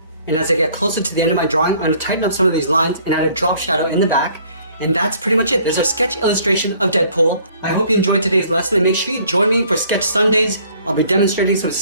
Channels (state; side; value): inverted; both; correlation -0.58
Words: And as I get closer to the end of my drawing, I'm going to tighten up some of these lines and add a drop shadow in the back. And that's pretty much it. There's our sketch illustration of Deadpool. I hope you enjoyed today's lesson, and make sure you join me for Sketch Sundays. I'll be demonstrating some